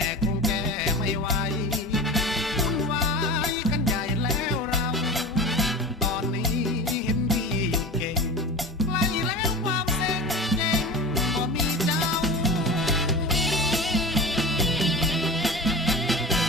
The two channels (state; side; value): normal; both; correlation 0.31